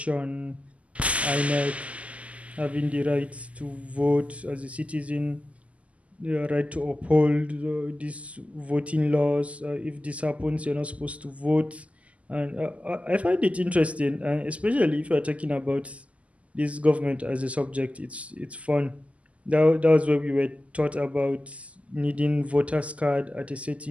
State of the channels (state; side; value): late; left; 0.067 ms